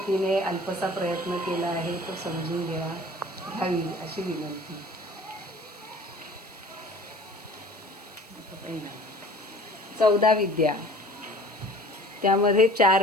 अल्पसा प्रयत्न केला आहे, तो समजून घ्यावी अशी विनंती. 14 विद्या, त्यामध्ये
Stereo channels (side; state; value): right; noise; hiss, 25 dB below the sound